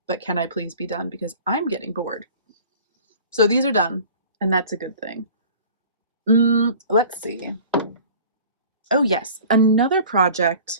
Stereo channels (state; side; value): inverted; both; correlation -0.45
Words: but can I please be done because I'm getting bored. So these are done, and that's a good thing. Let's see. Oh yes, another